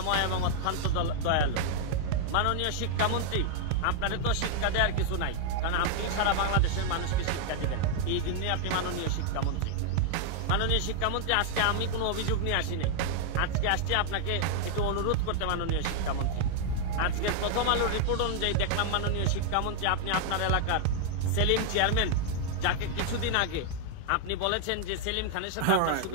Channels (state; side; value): different; both; correlation 0.00